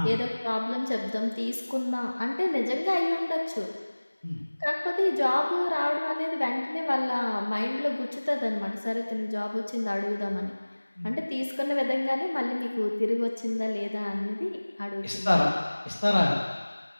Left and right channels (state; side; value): inverted; both; correlation -1.00